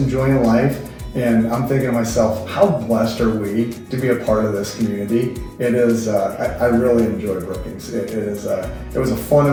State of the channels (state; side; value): identical; both; correlation 1.00